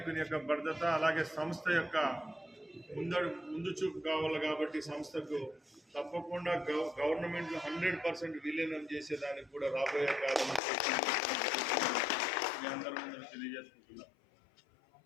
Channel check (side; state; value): right; drops out; at 10.6 s